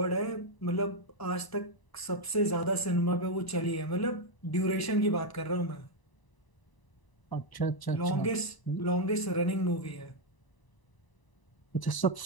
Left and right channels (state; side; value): late; right; 1.0 ms